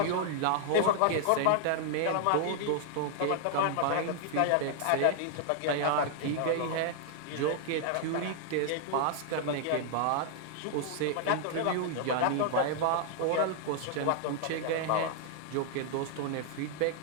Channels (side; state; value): both; different; correlation -0.01